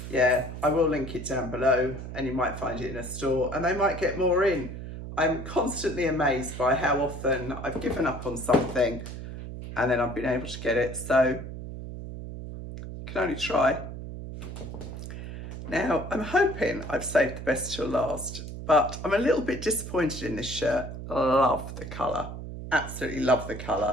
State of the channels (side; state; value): right; noise; hum, 9 dB below the sound